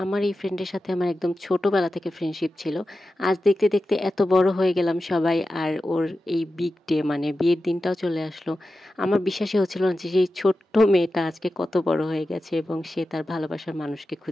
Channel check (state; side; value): normal; both; correlation 0.92